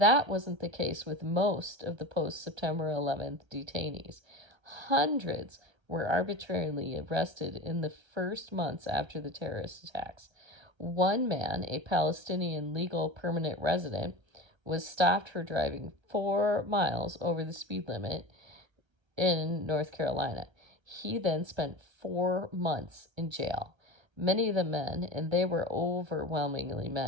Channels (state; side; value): late; left; 1.3 ms